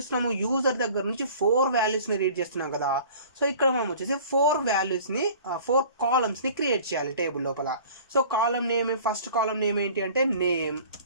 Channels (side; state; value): both; inverted; correlation -0.46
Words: యూజర్ దగ్గర నుంచి 4 వాల్యూస్ని రీడ్ చేస్తున్నాం కదా. సో ఇక్కడ మనం వచ్చేసి 4 కాలమ్స్ని క్రియేట్ చేయాలి టేబుల్ లోపల. So column name, first column name ఏంటి అంటే నేమ్,